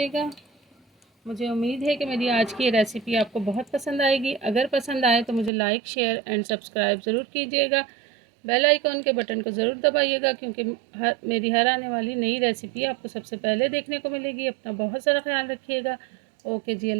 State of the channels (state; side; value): drops out; left; at 5.5 s